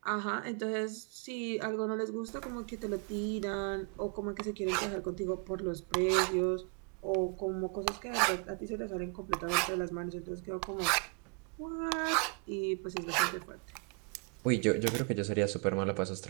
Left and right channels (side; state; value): left; quieter; 37.5 dB